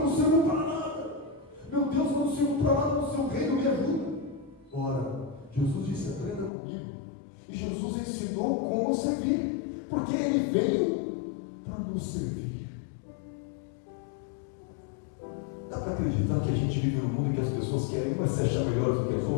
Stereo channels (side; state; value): right; drops out; at 6.5 s